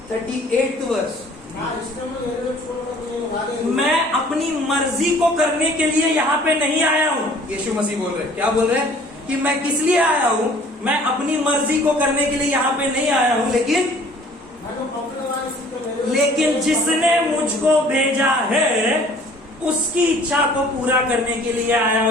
38 verse. मैं अपनी मर्जी को करने के लिए यहाँ पे नहीं आया हूँ। यीशु मसीह बोल रहे हैं, क्या बोल रहे हैं? कि मैं किस लिए आया हूँ? मैं अपनी मर्जी को करने के लिए यहाँ पे नहीं आया हूँ, लेकिन जिसने मुझको भेजा है उसकी इच्छा को पूरा करने के लिए आया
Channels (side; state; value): both; normal; correlation 0.53